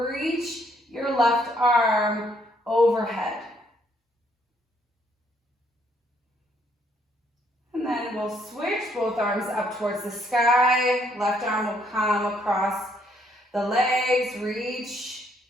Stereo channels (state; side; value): normal; both; correlation 0.69